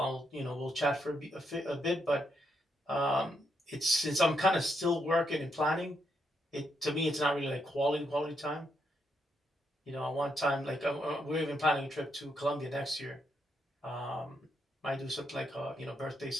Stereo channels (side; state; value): both; normal; correlation 0.79